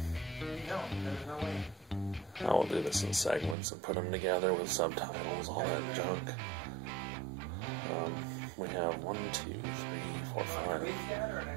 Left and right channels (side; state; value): left; drops out; at 3.6 s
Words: I will do this in segments and put them together with subtitles, all that junk. We have 1, 2, 3, 4, 5,